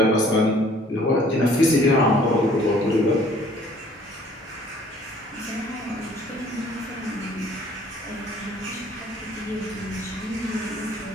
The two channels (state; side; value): normal; both; correlation 0.56